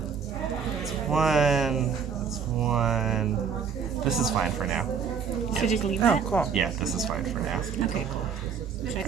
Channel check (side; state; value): left; quieter; 6.6 dB